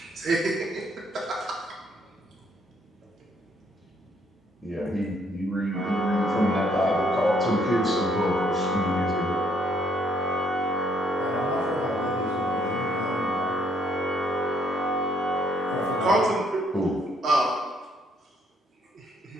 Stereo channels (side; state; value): both; normal; correlation 0.68